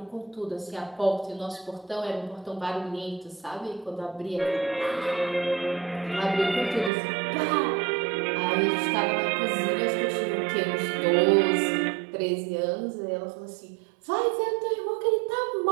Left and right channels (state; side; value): drops out; left; at 6.9 s